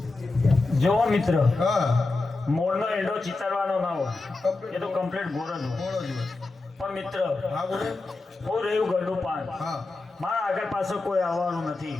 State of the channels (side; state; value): right; quieter; 3.4 dB